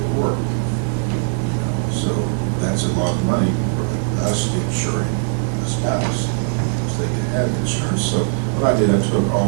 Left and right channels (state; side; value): silent; left; digital silence